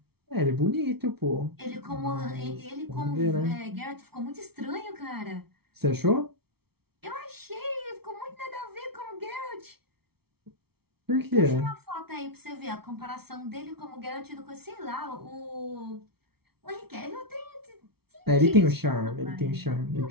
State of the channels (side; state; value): left; late; 0.95 ms